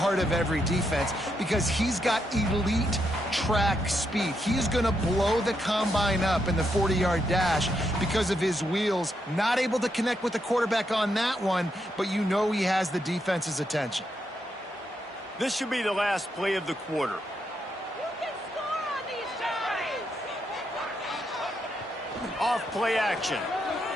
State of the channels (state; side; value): normal; both; correlation 0.80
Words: of every defense because he's got elite track speed. He's going to blow the combine up in the 40-yard dash because of his wheels. Not able to connect with the quarterback on that one, but you know he has the defense's attention. This should be the last play of the quarter. You can score on these drives. Off play action.